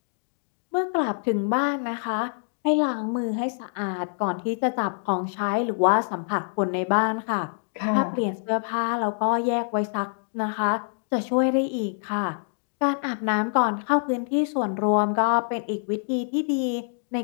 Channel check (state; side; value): silent; right; digital silence